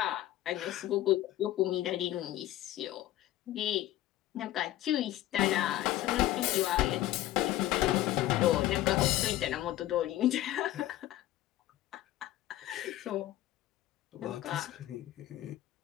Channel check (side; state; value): right; quieter; 14.6 dB